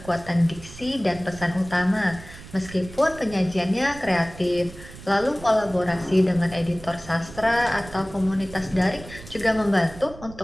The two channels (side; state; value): right; noise; rumble, 17 dB below the sound